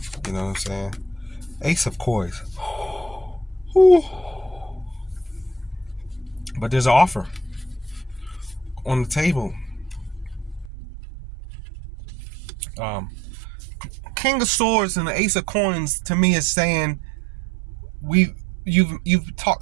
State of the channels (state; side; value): drops out; left; at 10.7 s